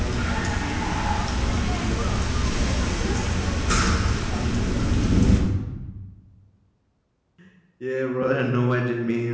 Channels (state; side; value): identical; both; correlation 1.00